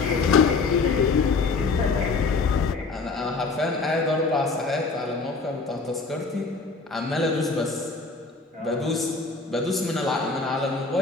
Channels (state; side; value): quieter; right; 4.1 dB